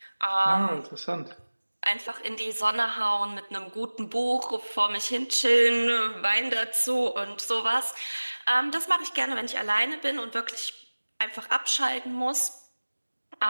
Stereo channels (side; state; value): both; inverted; correlation -1.00